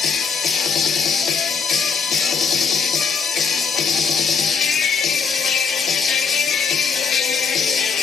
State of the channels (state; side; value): quieter; right; 5.7 dB